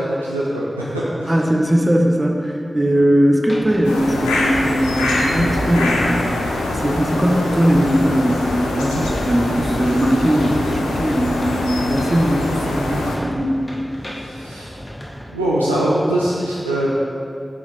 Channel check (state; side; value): normal; both; correlation 0.93